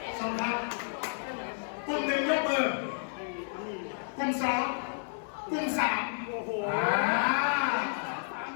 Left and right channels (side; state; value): right; silent; digital silence